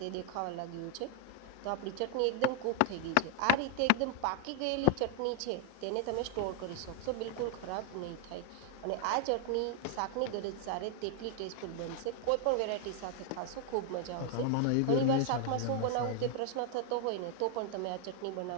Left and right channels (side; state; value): both; different; correlation 0.00